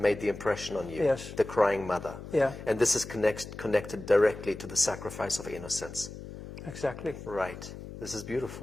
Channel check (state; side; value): noise; left; hum, 12 dB below the sound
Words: the impression on you. Yes. The crying mother. yeah, And this is connected directly to the sacrifice of innocence. exactly, Right. This is